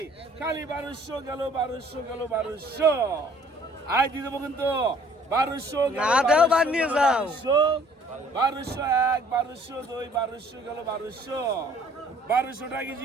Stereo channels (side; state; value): both; normal; correlation 0.57